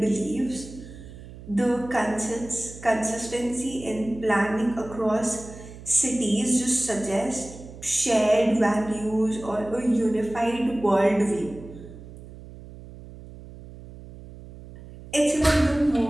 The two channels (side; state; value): right; noise; hum, 16 dB below the sound